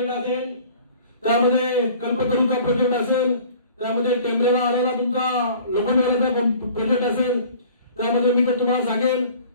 असेल, त्यामध्ये कल्पतरूचा प्रोजेक्ट असेल, त्यामध्ये टेंबरेला आलेला तुमचा लोखंडवाल्याचा प्रोजेक्ट असेल, त्यामध्ये मी तर तुम्हाला सांगेन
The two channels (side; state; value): both; inverted; correlation -0.48